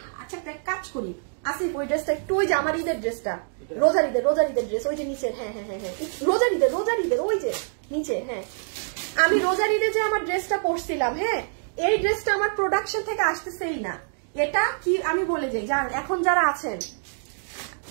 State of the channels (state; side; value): silent; left; digital silence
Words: আচ্ছা একটা কাজ করি, আসিফ ওই ড্রেসটা একটু, ওই যে আমার ঈদের ড্রেসটা, রোজার ঈদের ড্রেস, ওই যে নিচে, হ্যাঁ হ্যাঁ হ্যাঁ হ্যাঁ রোজার ঈদের ওই যে নিচে, হ্যাঁ আমি রোজার ঈদে যে আমার ড্রেসটা পরছিলাম, হ্যাঁ এই ড্রেসটা আমার প্রোডাকশন থেকে আসতেছেই না। এটা কি আমি বলে যাই, জান এখন যারা আছেন,